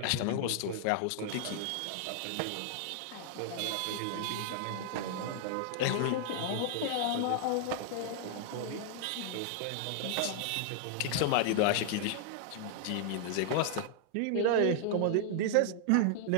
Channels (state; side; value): different; both; correlation 0.00